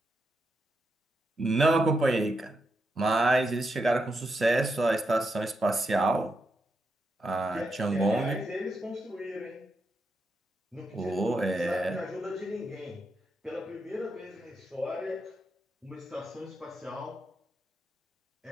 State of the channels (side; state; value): both; normal; correlation 0.84